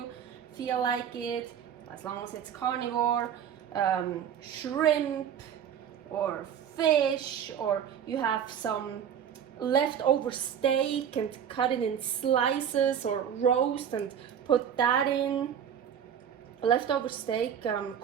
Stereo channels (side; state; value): left; quieter; 8.6 dB